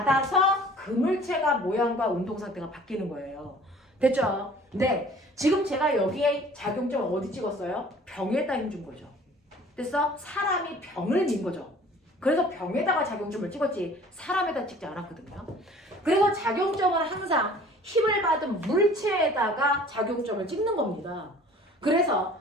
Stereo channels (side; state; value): both; normal; correlation 0.50